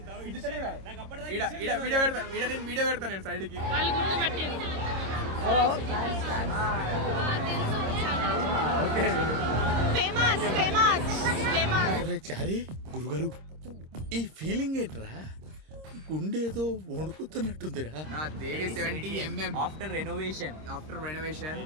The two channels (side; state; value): left; late; 26 ms